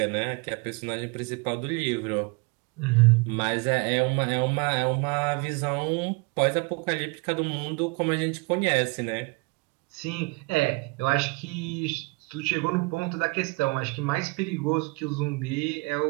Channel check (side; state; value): left; quieter; 28.0 dB